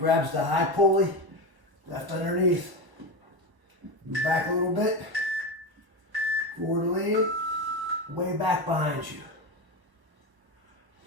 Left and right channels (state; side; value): late; left; 1.1 ms